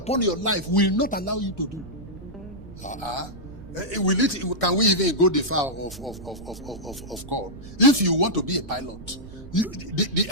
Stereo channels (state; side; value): noise; right; rumble, 16 dB below the sound